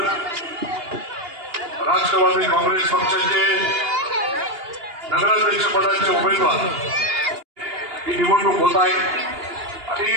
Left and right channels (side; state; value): left; late; 2.8 ms